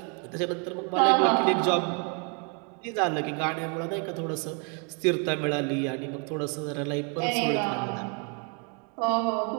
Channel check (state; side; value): quieter; left; 37.2 dB